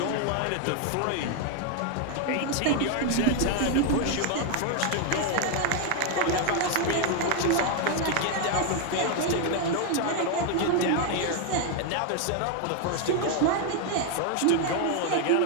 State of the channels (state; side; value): different; both; correlation 0.01